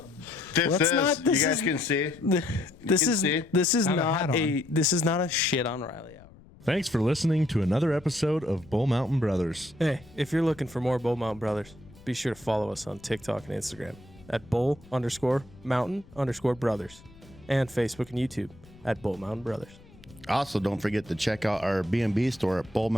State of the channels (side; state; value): left; noise; rumble, 23 dB below the sound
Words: You guys can see. This can is see. this is I have a not hat a this is not a shit on Riley hour. Thanks for listening to another episode of Bull Mountain Brothers. Hey, if you're looking for more Bull Mountain Brothers, be sure to follow us on TikTok and Instagram at bull_mountain_brothers and Facebook and YouTube at Bull Mountain Brothers. Also, don't forget to check out our B&B store at